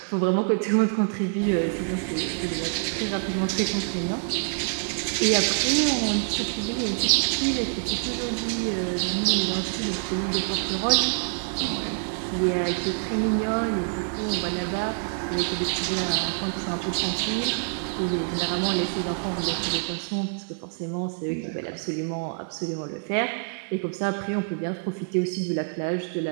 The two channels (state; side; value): silent; left; digital silence